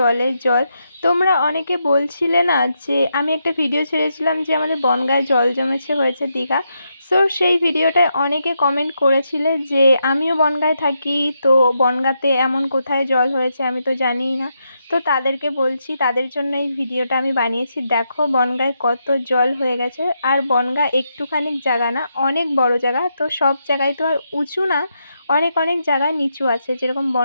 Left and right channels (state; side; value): inverted; both; correlation -0.82